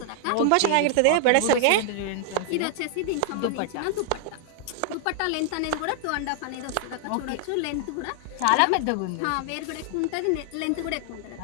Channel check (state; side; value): different; both; correlation 0.00